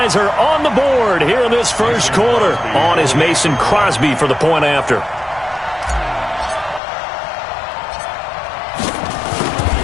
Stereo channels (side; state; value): right; drops out; at 6.8 s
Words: are on the board here in this first quarter. On is Mason Crosby for the point after.